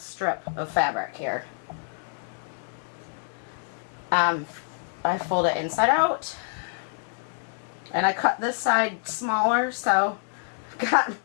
of fabric here. I fold it inside out, and I cut this side smaller, so I've got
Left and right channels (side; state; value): right; silent; digital silence